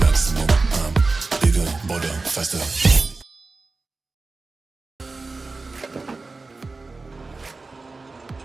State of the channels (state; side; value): quieter; left; 3.7 dB